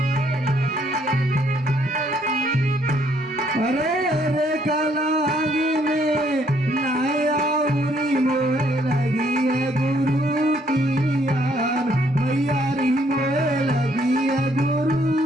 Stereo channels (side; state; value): both; normal; correlation 0.68